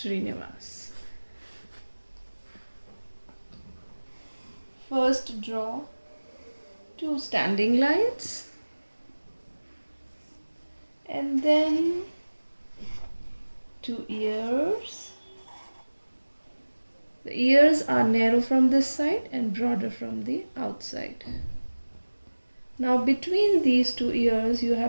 First draw two standing lines and then two ears. The ears are narrow from this side and broader from the outside. Now between these two ears you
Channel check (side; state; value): both; inverted; correlation -1.00